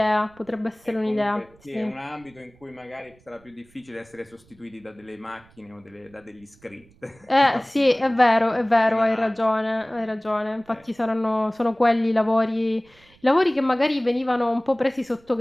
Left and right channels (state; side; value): noise; right; rumble, 29 dB below the sound